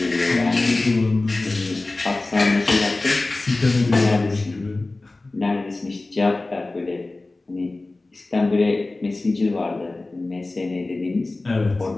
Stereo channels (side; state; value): right; quieter; 3.1 dB